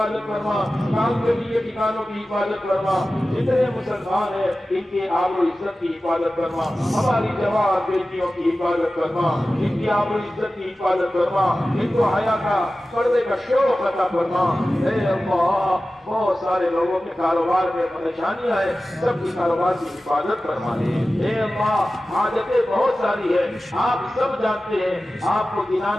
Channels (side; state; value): both; normal; correlation 0.95